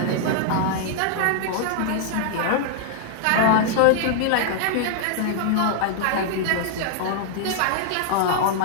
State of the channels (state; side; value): different; both; correlation -0.01